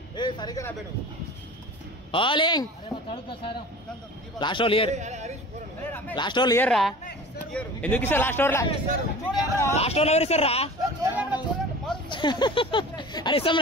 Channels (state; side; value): normal; both; correlation 0.39